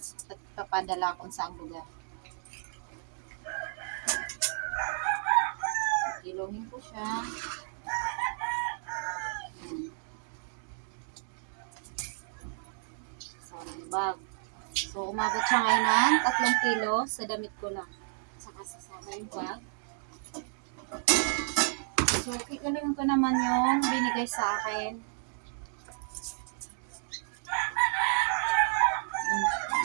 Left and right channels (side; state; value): left; silent; digital silence